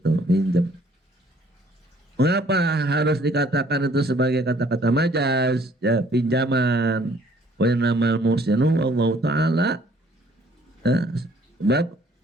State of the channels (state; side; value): normal; both; correlation 0.60